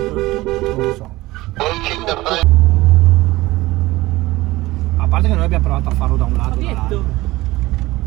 Non lo so. Reaching the front. A parte che noi abbiamo provato a farlo da un lato. Fabietto,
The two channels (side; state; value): left; quieter; 19.0 dB